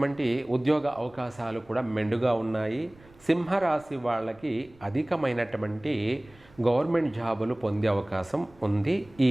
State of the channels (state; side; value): noise; right; rumble, 27 dB below the sound